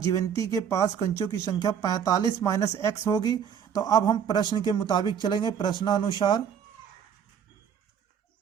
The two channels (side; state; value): left; quieter; 8.0 dB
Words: के पास कंचों की संख्या 45 माइनस x होगी। तो अब हम प्रश्न के मुताबिक चलेंगे।